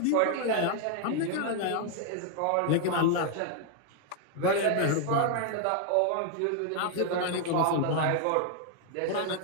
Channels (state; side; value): different; both; correlation 0.00